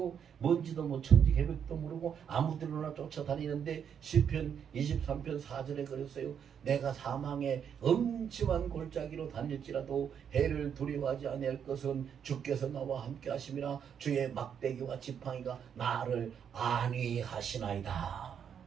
뭔지도 뭐 천지 계획도 모르고 아무데나 쫓아다니는데 시편 23편 4절에 그랬어요. 내가 사망의 엄침한 골짜기로 다닐지라도 해를 두려워하지 아니할 것은 주께서 나와 함께 하심이라 주의 막대기와 지팡이가 나를 안위하시나이다.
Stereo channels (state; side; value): quieter; left; 8.0 dB